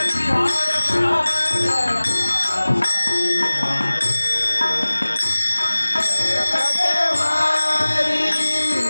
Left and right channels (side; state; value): both; inverted; correlation -1.00